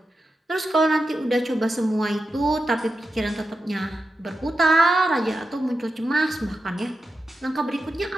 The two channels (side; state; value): both; normal; correlation 0.89